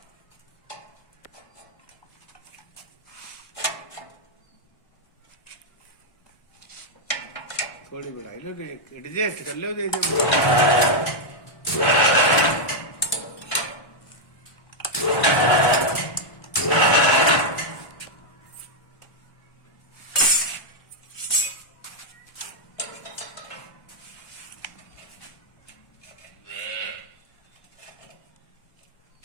थोड़ी बढ़ाई लो, एडजस्ट कर लो जैसे।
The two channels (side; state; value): right; late; 1.2 ms